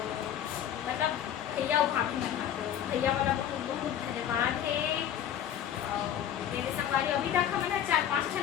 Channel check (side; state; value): right; quieter; 10.3 dB